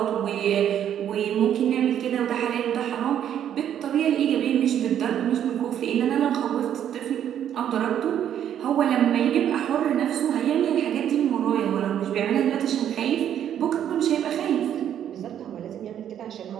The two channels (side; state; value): left; quieter; 10.0 dB